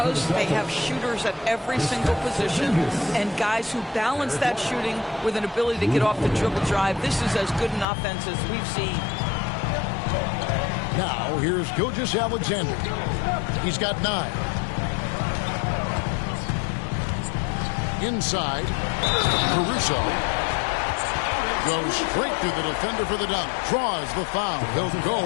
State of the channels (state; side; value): drops out; right; at 7.9 s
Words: they have shooters at every single position and guys who balance that shooting with an ability to get off the dribble drive. This is as good an offense as we've seen. Now, here's Gilgeous-Alexander. He's got 9. Inside, Caruso goes straight through the defender for the dunk. Draws the foul. He'll